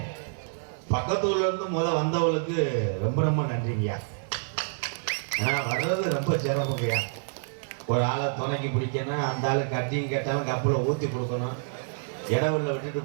பக்கத்தூர்ல இருந்து வந்தவங்களுக்கு ரொம்ப ரொம்ப நன்றிங்கய்யா. ஏன்னா வர்றது ரொம்ப சிரமங்கய்யா. ஒரு ஆளை துணைக்கி பிடிக்கணும், அந்த ஆளு கட்டிங் கேட்டாலும் கப்பலை ஊற்றி கொடுக்கணும், இடவுள்ள விட்டுட்டு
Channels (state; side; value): silent; left; 60 dB below the other